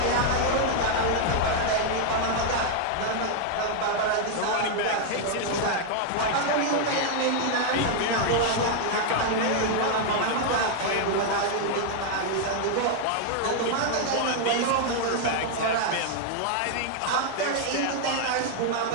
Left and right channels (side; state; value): both; different; correlation 0.00